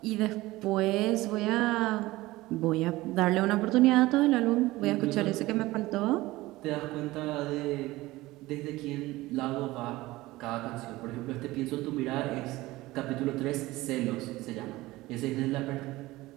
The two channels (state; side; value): quieter; left; 18.8 dB